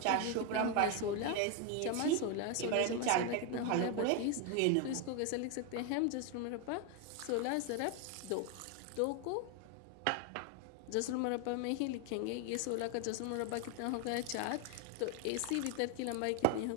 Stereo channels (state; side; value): different; both; correlation 0.01